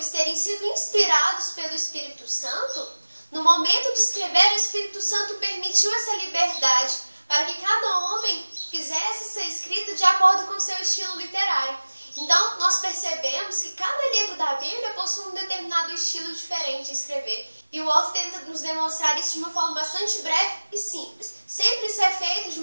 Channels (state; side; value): inverted; both; correlation -1.00